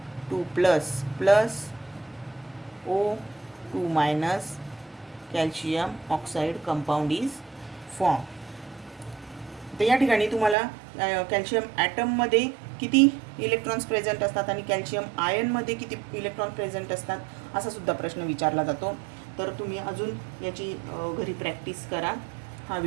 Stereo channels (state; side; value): drops out; left; at 10.6 s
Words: 2 plus plus O2 minus calcium oxide compound is form. तर या ठिकाणी तुम्हाला कॅल्शियम ॲटममध्ये किती इलेक्ट्रॉन्स प्रेझेंट असतात आणि कॅल्शियम आयनमध्ये किती इलेक्ट्रॉन प्रेझेंट असतात असा सुद्धा प्रश्न विचारला जातो. तर तुम्ही अजून याची घरी प्रॅक्टिस करा. हा